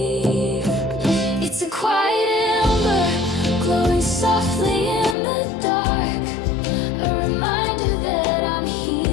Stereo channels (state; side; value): drops out; right; at 5.2 s